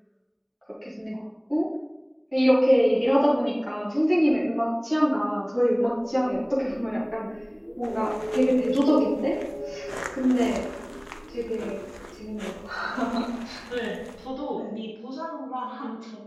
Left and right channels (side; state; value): both; identical; correlation 1.00